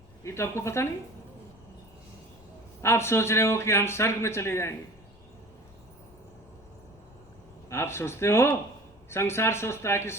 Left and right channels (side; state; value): left; noise; rumble, 26 dB below the sound